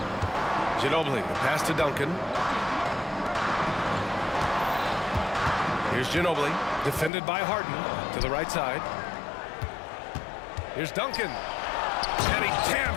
Ginobili, the pass to Duncan. Here's Ginobili, defended by Harden to the right side. Here's Duncan. And he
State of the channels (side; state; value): right; drops out; at 7.1 s